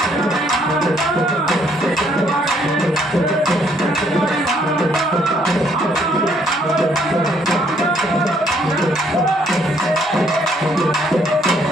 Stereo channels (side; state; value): both; normal; correlation 0.67